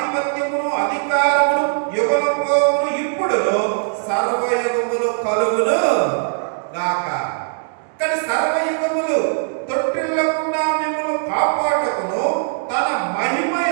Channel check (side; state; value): left; silent; digital silence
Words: అధికారమును యుగములు ఇప్పుడు సర్వయుగములు కలుగును సర్వయుగములు తొట్టిల్లకుండా మిమ్మల్ని కాపాడుటకును తన మహిమ